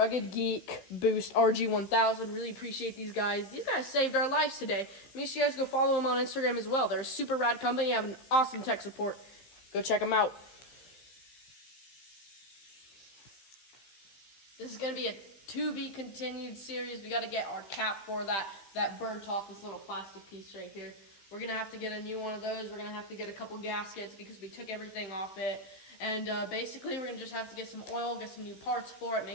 Geek Boost RG1000. Really appreciate these guys. These guys saved our lives today. Make sure you guys go follow them on Instagram as well. They're a super rad company. They have an awesome tech support. Go check them out. This is going to be a to-be-continued series. We got to get our cap for that burnt off this little plastic piece right here. We're going to have to get a new one of those. We're going to have to get a couple gaskets because we took everything off it. And basically, we're going to just have to get some oil, get some new parts for it,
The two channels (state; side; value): late; right; 15 ms